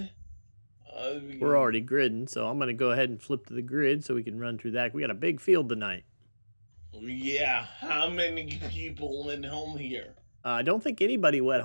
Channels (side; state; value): both; inverted; correlation -1.00